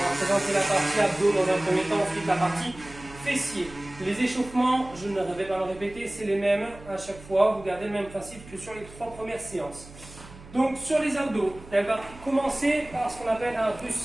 va présenter la partie abdos dans un premier temps, ensuite la partie fessiers. Les échauffements, je ne vais pas le répéter, c'est les mêmes à chaque fois. Vous gardez le même principe que sur les 3 premières séances. Donc sur les abdos, elle va commencer par ce qu'on appelle un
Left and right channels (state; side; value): noise; right; hum, 19 dB below the sound